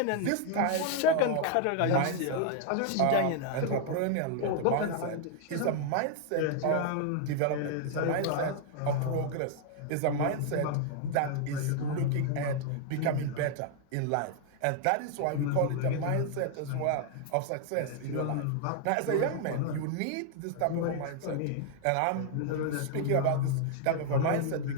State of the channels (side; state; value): both; different; correlation 0.00